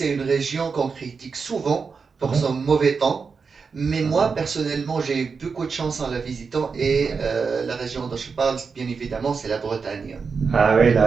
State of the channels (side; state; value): left; quieter; 5.2 dB